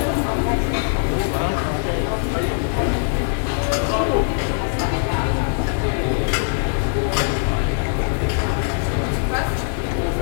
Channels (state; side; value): silent; right; digital silence